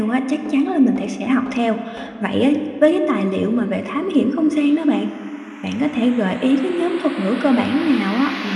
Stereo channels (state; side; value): identical; both; correlation 1.00